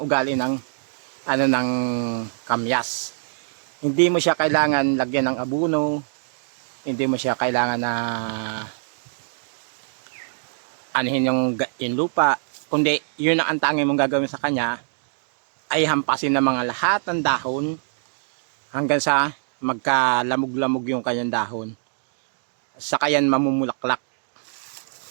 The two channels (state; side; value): silent; left; digital silence